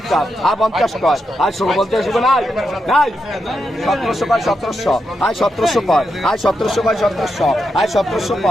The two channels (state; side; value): normal; both; correlation 0.85